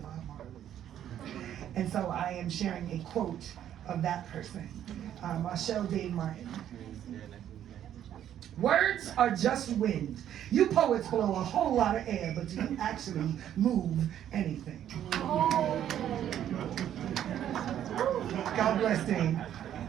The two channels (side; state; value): left; quieter; 10.7 dB